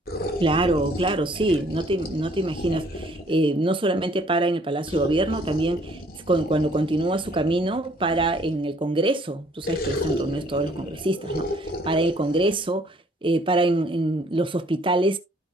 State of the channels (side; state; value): both; normal; correlation 0.60